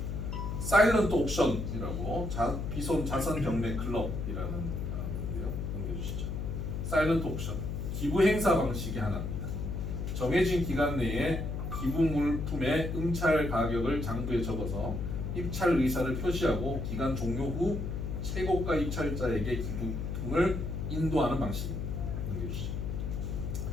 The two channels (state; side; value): noise; left; hum, 3 dB below the sound